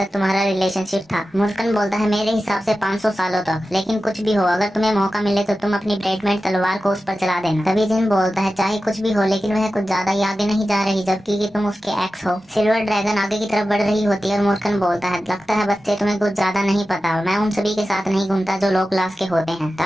तुम्हारा रिलेशनशिप था? मूर्खन बोलता है मेरे हिसाब से 500 सालों तक, लेकिन कुछ भी हो अगर तुम्हें मौका मिले तो तुम अपनी ब्रेडमेंट तलवार को उस पर चला देना। तभी जिन बोलता है चाहे कुछ भी हो लेकिन वह कुछ ज्यादा ही आगे नहीं जा रही जबकि कि तुम उसके एक्स हो। सिल्वर ड्रैगन आगे की तरफ बढ़ रही होती है और मूर्खन बोलता है लगता है बच्चे तुम्हें कुछ ज्यादा नहीं पता, मैं उन सभी के साथ नहीं घूमता जो लो क्लास के होते हैं,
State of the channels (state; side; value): normal; both; correlation 0.93